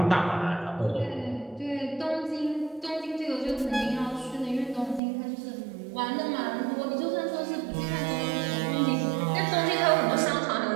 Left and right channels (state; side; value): drops out; left; at 5.0 s